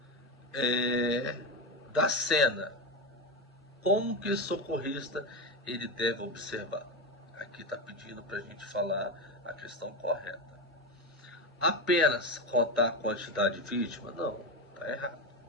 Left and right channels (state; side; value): normal; both; correlation 0.16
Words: da cena, como que o socorrista ele deve observar? Aqui está pedindo para a gente falar a questão correta. Apenas contar a quantidade de vítima? Não, está errado.